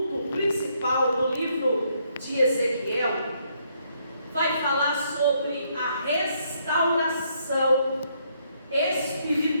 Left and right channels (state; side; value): inverted; both; correlation -0.72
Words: principal do livro de Ezequiel vai falar sobre a restauração